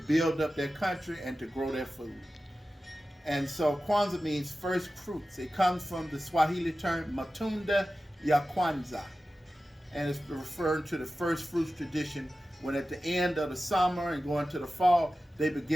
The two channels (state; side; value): normal; both; correlation 0.94